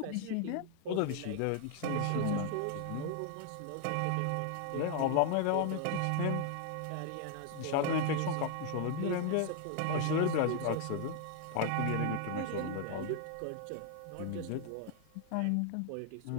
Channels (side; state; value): both; different; correlation 0.00